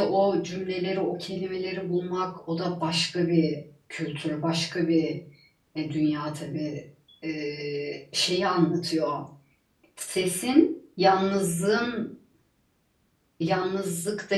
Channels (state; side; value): identical; both; correlation 1.00